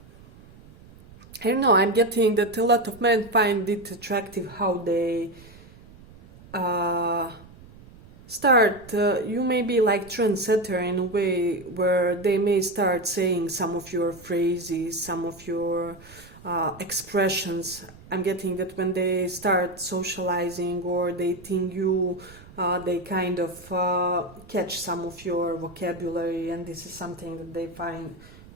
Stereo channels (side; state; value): right; noise; rumble, 21 dB below the sound